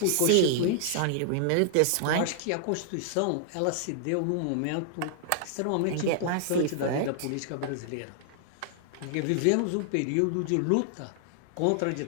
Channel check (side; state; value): both; different; correlation -0.01